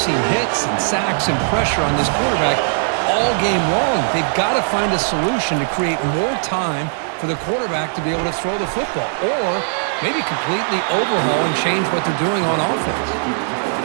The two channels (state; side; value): silent; left; digital silence